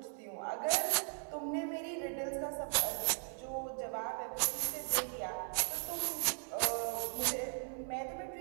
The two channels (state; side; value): silent; left; 52 dB below the other